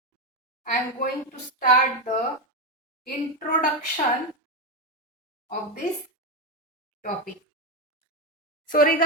I am going to start the introduction of this topic. So,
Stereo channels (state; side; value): normal; both; correlation 0.10